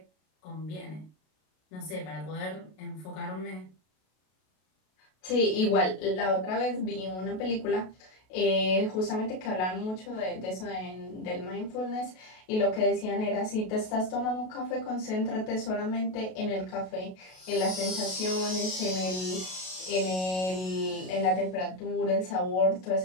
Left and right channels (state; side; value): late; right; 32 ms